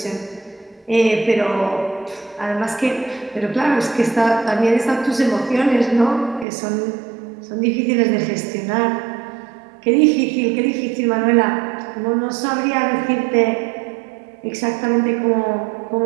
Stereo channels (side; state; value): left; drops out; at 6.5 s